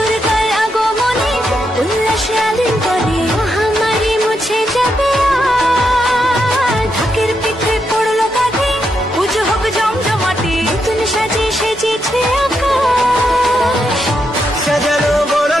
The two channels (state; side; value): normal; both; correlation 0.82